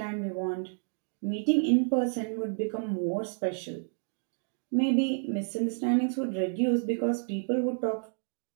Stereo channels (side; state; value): left; silent; 58 dB below the other